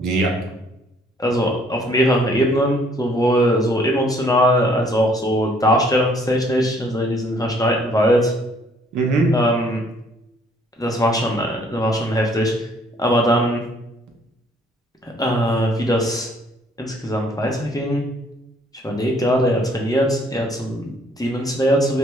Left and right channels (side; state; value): both; normal; correlation 0.62